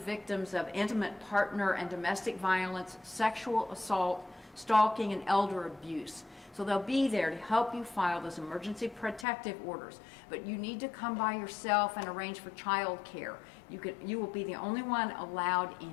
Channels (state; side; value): drops out; right; at 9.2 s